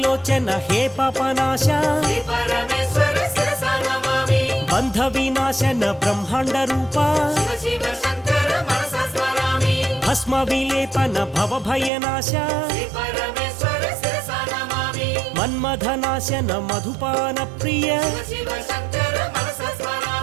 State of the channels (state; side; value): drops out; left; at 11.9 s